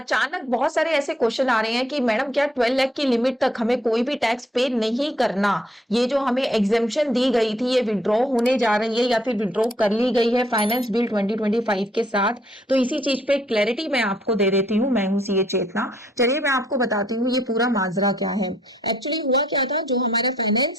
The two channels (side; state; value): both; normal; correlation 0.68